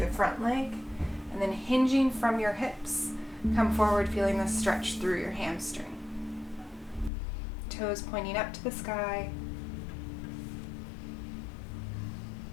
front leg, and then hinging from your hips, come forward feeling the stretch through your hamstring. Toes pointing up to the sky.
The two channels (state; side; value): drops out; right; at 7.1 s